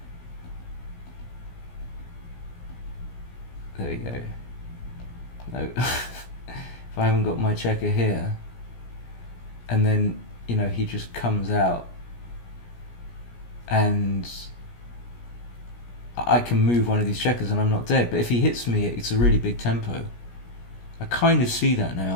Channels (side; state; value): right; late; 17 ms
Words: There you go. No, if I haven't got my checker here, and then he just comes out, and I can move one of these checkers and I'm not dead. But if he hits me, it's a really big tempo. I kind of see that